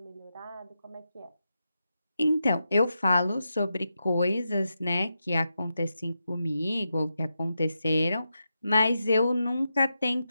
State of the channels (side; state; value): both; inverted; correlation -0.87